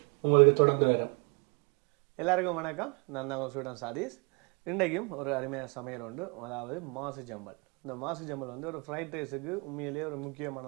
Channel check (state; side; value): quieter; left; 33.1 dB